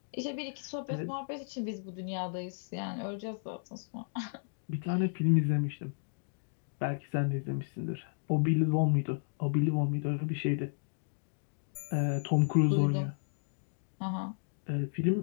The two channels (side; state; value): right; silent; digital silence